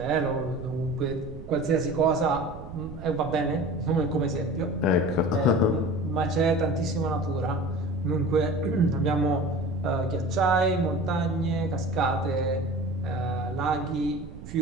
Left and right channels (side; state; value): right; noise; rumble, 13 dB below the sound